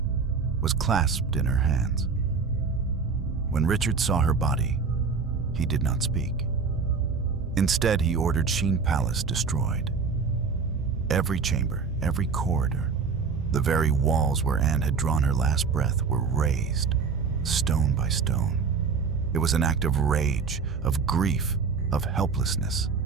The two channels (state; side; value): quieter; left; 5.1 dB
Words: was clasped in her hands. When Richard saw her body, he did not speak. Instead, he ordered Sheen Palace destroyed. Every chamber, every corridor, the very walls where Anne had drawn her last breath were razed, stone by stone. It was an act of rage, of grief, of helplessness,